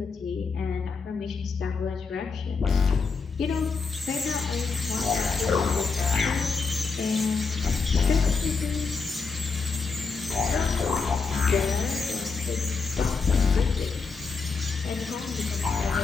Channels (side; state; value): right; quieter; 4.8 dB